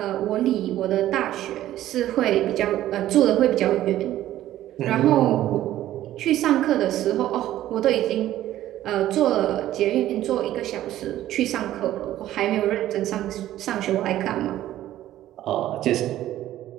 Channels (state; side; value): quieter; left; 13.5 dB